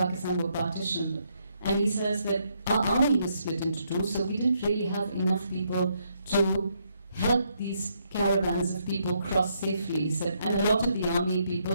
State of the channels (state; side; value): inverted; both; correlation -0.75